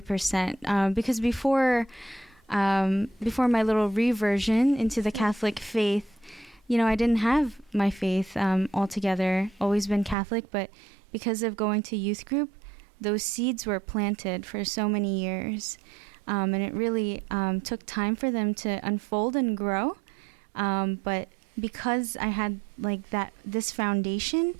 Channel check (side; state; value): left; drops out; at 10.2 s